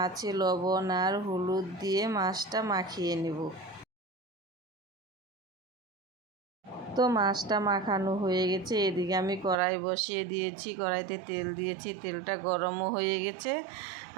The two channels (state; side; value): drops out; left; at 9.6 s